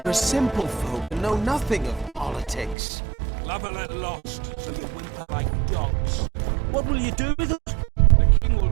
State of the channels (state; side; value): drops out; left; at 2.8 s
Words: We're simple folk and know nothing of politics. Love a little lost, so you whimper like dogs. What will you do with us? The king will